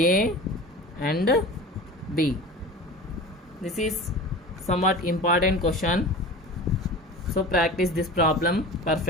and b. This is somewhat important question, so practice this problem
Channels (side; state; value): both; normal; correlation 0.36